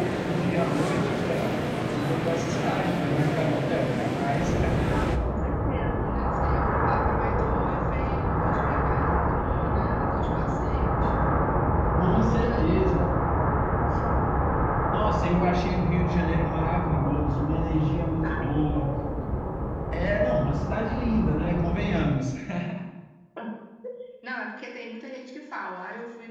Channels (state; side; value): identical; both; correlation 1.00